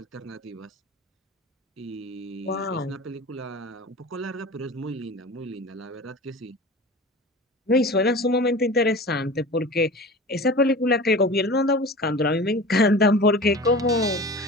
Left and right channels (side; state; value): both; normal; correlation 0.36